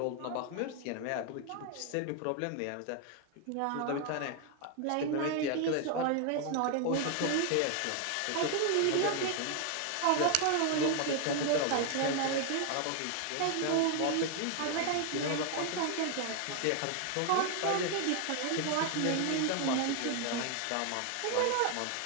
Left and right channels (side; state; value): both; different; correlation 0.00